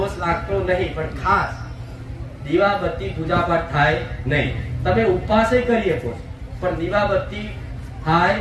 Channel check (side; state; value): both; identical; correlation 1.00